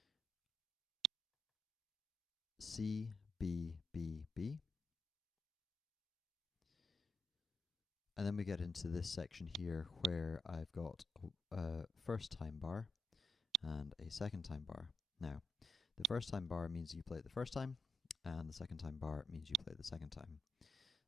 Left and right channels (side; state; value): both; normal; correlation 0.84